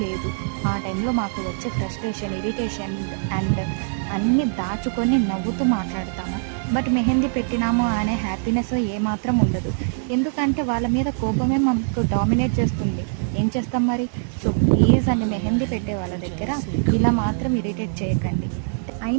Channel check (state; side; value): silent; left; digital silence